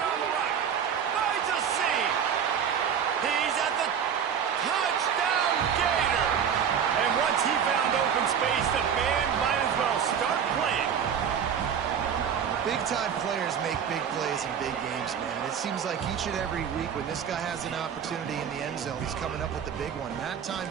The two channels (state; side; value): quieter; left; 7.9 dB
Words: the right. Finds a seam. He's at the touchdown Gator. And once he found open space, the band might as well start playing. Big-time players make big plays in big games, man. It seems like each and every week when this guy has an opportunity in the end zone, he's coming up with the big one. That time,